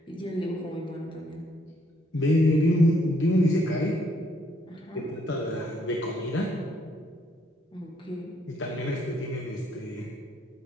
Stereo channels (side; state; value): both; normal; correlation 0.69